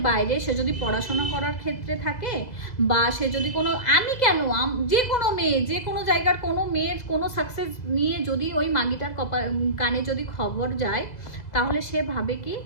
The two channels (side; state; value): right; late; 2.0 ms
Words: বাইরে সে যদি পড়াশোনা করার ক্ষেত্রে থাকে, বা সে যদি কোনো, আমি কেন, যে কোনো মেয়ে, যে কোনো জায়গার কোনো মেয়ের কোনো সাকসেস নিয়ে যদি ওই মাগিটার কানে যদি খবর যায়, তাহলে সে ভাবে কি